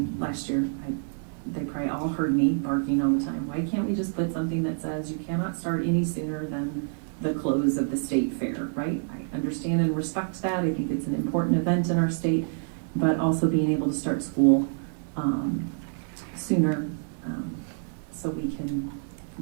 last year? They probably all heard me barking all the time. Why can't we just put something that says you cannot start any sooner than the close of the state fair, right? I understand and respect that. I think it's an important event in our state, but also being able to start school sooner so we can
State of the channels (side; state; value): left; silent; digital silence